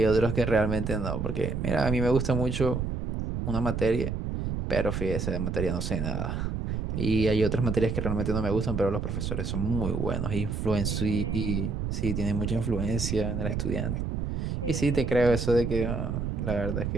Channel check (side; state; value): right; noise; rumble, 2 dB below the sound